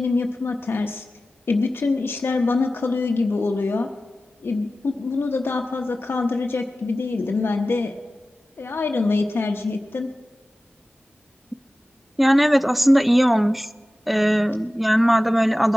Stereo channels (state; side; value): normal; both; correlation 0.95